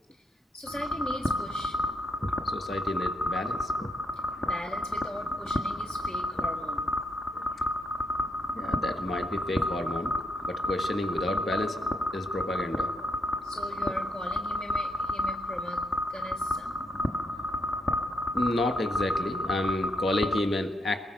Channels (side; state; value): both; normal; correlation 0.76